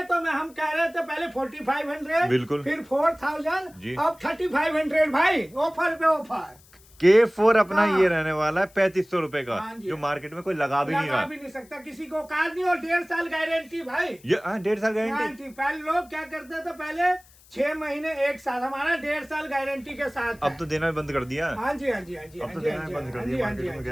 तो हम कह रहे थे पहले 4500, बिल्कुल। फिर 4000, जी। अब 3500 भाई, ऑफर पे ऑफर। K4 अपना हाँ। ये रहने वाला है 3500 रुपए का, हाँ जी। जो मार्केट में कोई लगा भी नहीं लगा रहा। भी नहीं सकता किसी को कार नहीं, और 1.5 साल गारंटी भाई। ये 1.5 साल गारंटी। गारंटी पहले लोग क्या करते थे, पहले 6 महीने 1 साल, हमारा 1.5 साल गारंटी के साथ अब है। तो देना भी बंद कर दिया। हाँ जी, हाँ जी, हाँ जी, अब हाँ तो जी, देना हाँ भी जी, बंद कर हाँ दिया जी, हाँ मार्केट जी, में हाँ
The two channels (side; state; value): left; noise; hiss, 27 dB below the sound